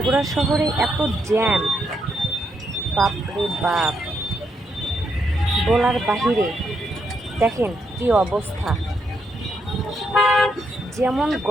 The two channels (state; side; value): normal; both; correlation 0.79